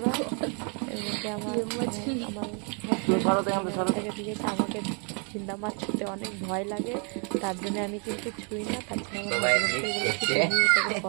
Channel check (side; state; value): left; quieter; 37.4 dB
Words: এর মধ্যে আমার দিয়েছে। আমাকে ঝিন্দা মাছ ছুঁতে অনেক ভয় লাগে, তার জন্য আমি কিন্তু ছুঁই না। তার জন্য আমার